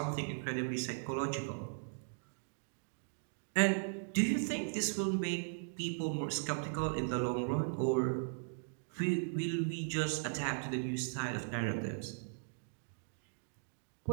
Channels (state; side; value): silent; left; digital silence